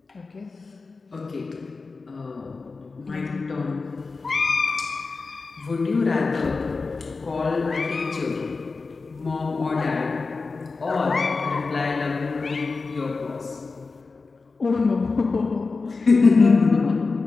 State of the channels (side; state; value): right; quieter; 4.1 dB